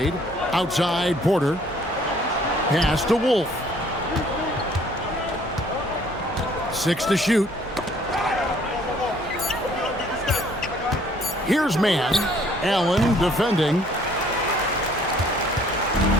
Outside Porter. Pass to Wolf. 6 to shoot. Here's Mann. Allen defending.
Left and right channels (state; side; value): normal; both; correlation 0.59